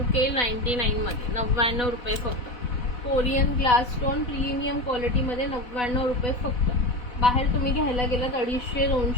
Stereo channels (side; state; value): right; late; 4.1 ms